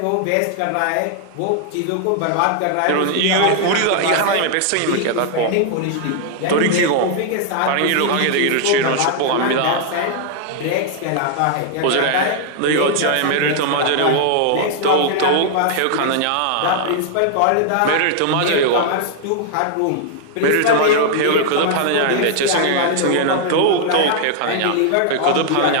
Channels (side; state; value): both; different; correlation 0.00